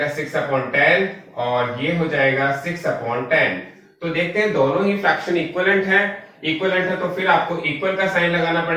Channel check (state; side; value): identical; both; correlation 1.00